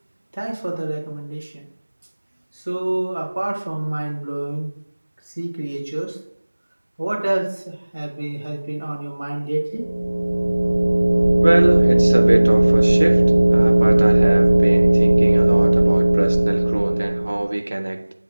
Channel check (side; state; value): both; inverted; correlation -1.00